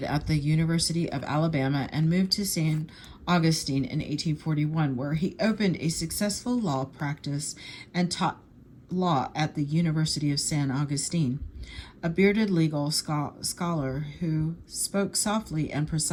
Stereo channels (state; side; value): identical; both; correlation 1.00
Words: at the University of Alabama and moved to San Augustine in 1841, where he opened a successful law practice and taught law at the University of San Augustine. A bearded legal scholar who spoke softly and